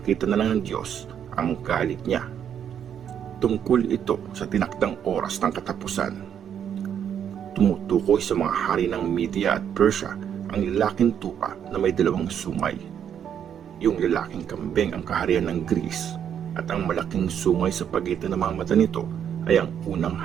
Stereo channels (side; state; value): left; quieter; 8.8 dB